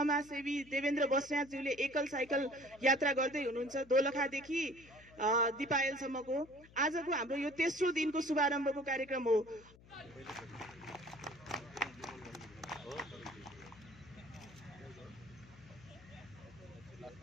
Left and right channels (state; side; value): noise; left; hum, 23 dB below the sound